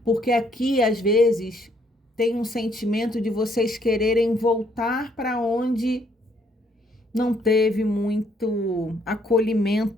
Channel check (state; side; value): normal; both; correlation 0.68